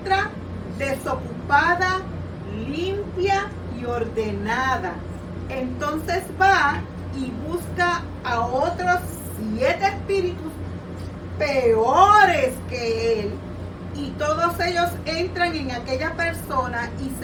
desocupada, limpia y ordenada. Entonces va y busca a otros 7 espíritus peores que él, y todos ellos entran en aquella persona y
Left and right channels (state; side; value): identical; both; correlation 1.00